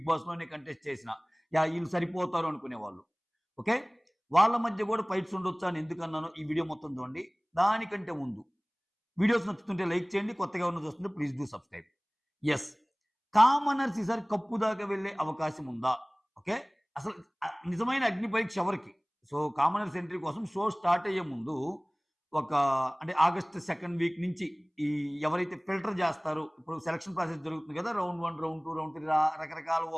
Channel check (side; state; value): both; identical; correlation 1.00